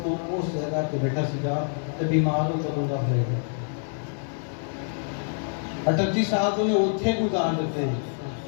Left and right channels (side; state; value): right; silent; 60 dB below the other